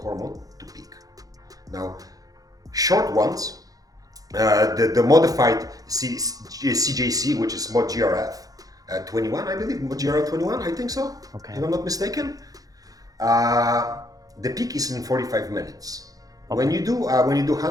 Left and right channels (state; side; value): late; left; 0.17 ms